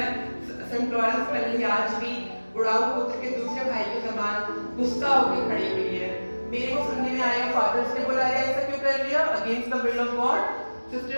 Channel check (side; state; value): both; inverted; correlation -1.00